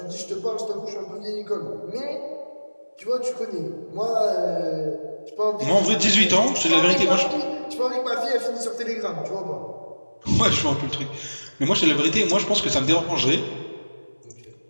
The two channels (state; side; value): inverted; both; correlation -1.00